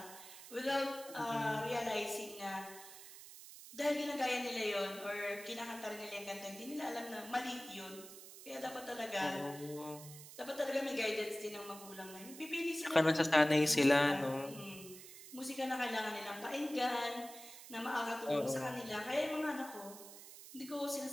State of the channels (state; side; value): noise; right; hiss, 15 dB below the sound